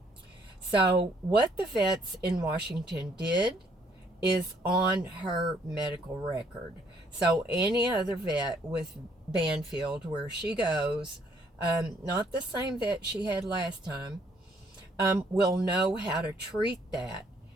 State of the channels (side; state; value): both; normal; correlation 0.66